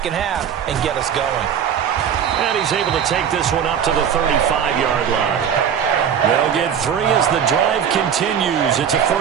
half and get us going? And he's able to take this one up to the 35-yard line. They'll get 3 as the drive continues. It's a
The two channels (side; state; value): left; quieter; 8.4 dB